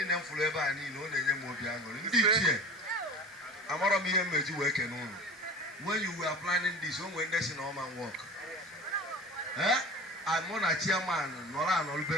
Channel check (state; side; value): normal; both; correlation 0.37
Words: m fụrụ ebe a niile ọ na-enye m obi aṅụrị. Ndị ichie amarọ m ihe mmeji wee kene ụlọ when you were planning this o nwere ndị si na ọma work mụ na chairman nọrọ